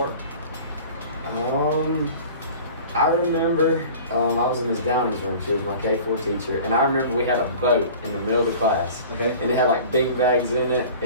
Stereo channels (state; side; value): inverted; both; correlation -0.42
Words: I remember I was in Ms. Downing's room. She was my K4 teacher, and I remember we had a boat in the middle of the class. Okay. And it had like bean bags in it,